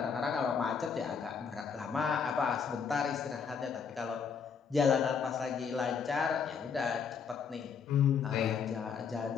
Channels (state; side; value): quieter; right; 6.3 dB